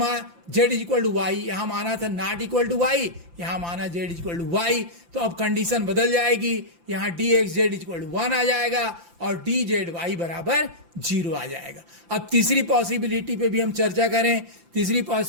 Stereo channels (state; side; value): late; left; 5.8 ms